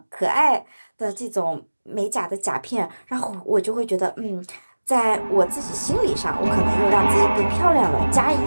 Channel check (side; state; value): both; inverted; correlation -1.00